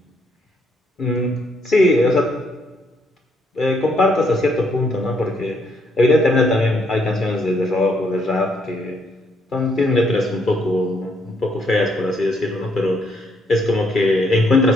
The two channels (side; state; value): both; normal; correlation 0.72